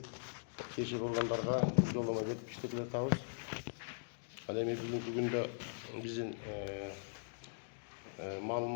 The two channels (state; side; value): silent; right; digital silence